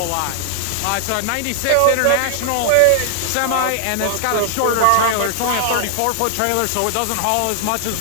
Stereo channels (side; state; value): both; different; correlation 0.00